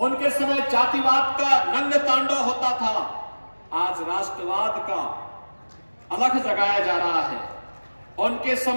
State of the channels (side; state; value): both; inverted; correlation -1.00